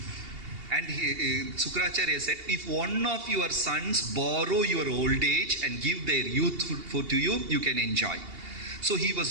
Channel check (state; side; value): late; left; 2.8 ms